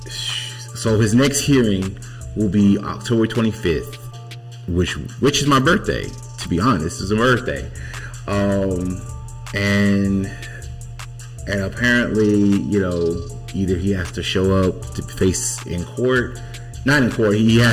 So his next hearing will be October 25th, which is my birthday. To be honest, it's a birthday. And apparently, either he has to show up to face in court. Not in court. He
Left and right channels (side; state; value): both; identical; correlation 1.00